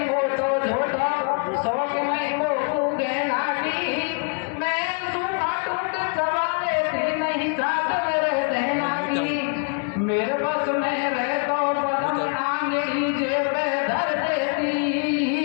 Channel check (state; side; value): quieter; right; 39.2 dB